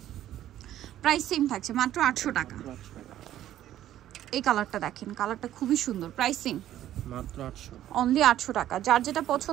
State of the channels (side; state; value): left; quieter; 12.4 dB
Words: প্রাইস সেম থাকছে, মাত্র 800 টাকা। এই কালারটা দেখেন, কালারটা খুবই সুন্দর, প্রাইস সেম, মাত্র 800, অনলি 800 টাকা। যার যেটা